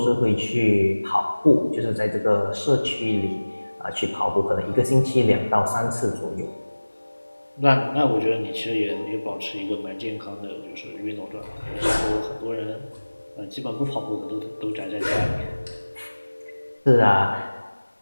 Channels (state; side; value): inverted; both; correlation -1.00